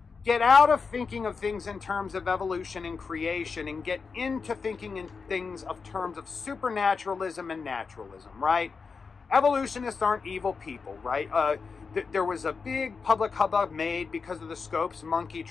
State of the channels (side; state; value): right; quieter; 5.1 dB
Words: get out of thinking of things in terms of evolution and creation and get into thinking in things of terms of supernaturalism and naturalism, right? Evolutionists aren't evil people, right? There was a big public hubbub made because of the Scopes monkey